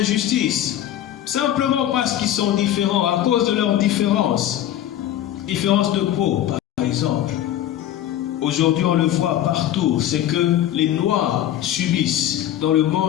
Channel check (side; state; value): right; quieter; 12.0 dB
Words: simplement parce qu'ils sont différents, à cause de leurs différences. Différence de peau, par exemple. Aujourd'hui, on le voit partout, c'est que les Noirs subissent dans le